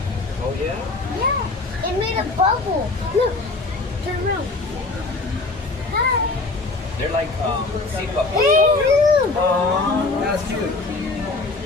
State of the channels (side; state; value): right; quieter; 3.4 dB